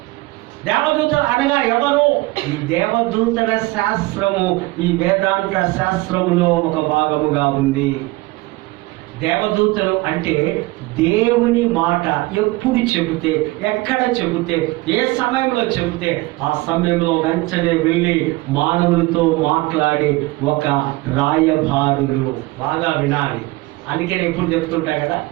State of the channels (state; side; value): quieter; left; 21.4 dB